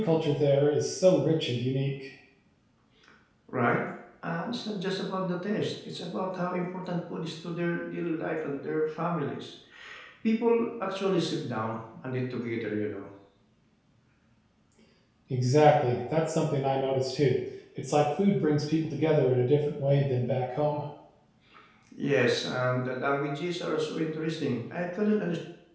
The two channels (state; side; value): identical; both; correlation 1.00